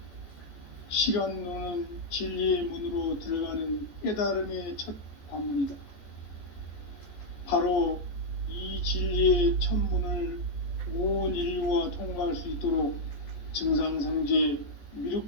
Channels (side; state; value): right; late; 14 ms